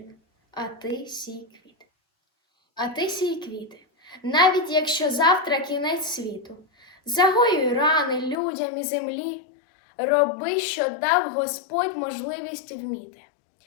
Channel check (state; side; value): drops out; right; at 8.3 s